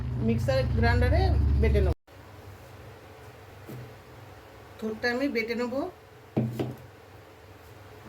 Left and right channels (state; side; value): identical; both; correlation 1.00